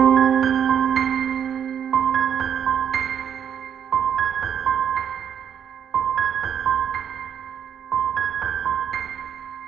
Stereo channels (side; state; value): left; quieter; 8.5 dB